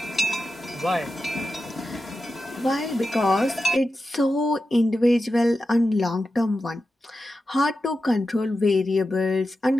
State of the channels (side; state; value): both; normal; correlation 0.91